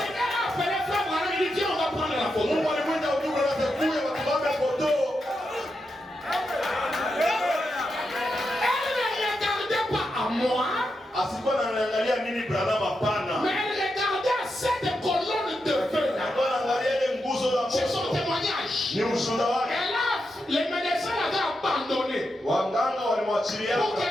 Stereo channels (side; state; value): both; normal; correlation 0.86